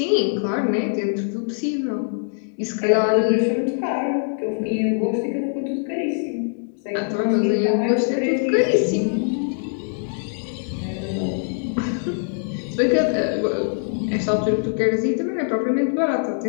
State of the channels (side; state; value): right; silent; digital silence